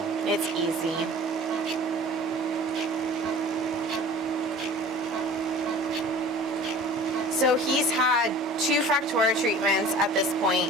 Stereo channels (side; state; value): both; normal; correlation 0.44